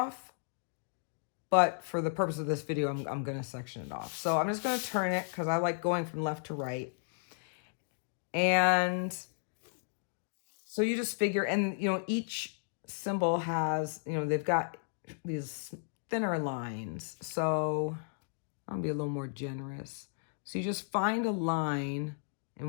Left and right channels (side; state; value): right; silent; digital silence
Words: but for the purpose of this video, I'm going to section it off. So I'm just going to turn it, because I like going from left to right. And so you just figure, and you know, each symbol has, you know, they've got these thinner lines. So I'll be a little more generous. So you just find a line